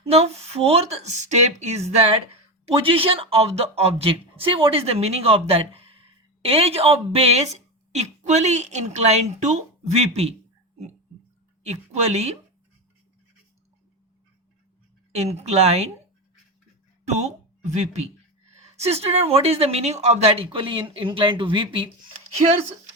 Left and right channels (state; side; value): normal; both; correlation 0.18